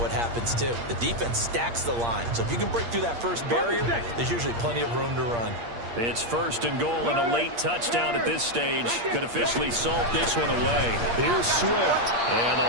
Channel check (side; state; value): left; late; 8.5 ms